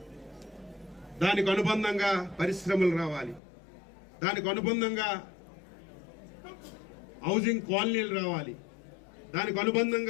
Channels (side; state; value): right; drops out; at 3.4 s